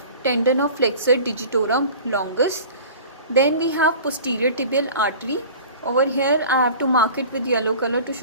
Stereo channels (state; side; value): inverted; both; correlation -0.41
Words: tendon of flexor digitorum longus. Then we have posterior tibial artery. Over here I have to mark it with yellow color to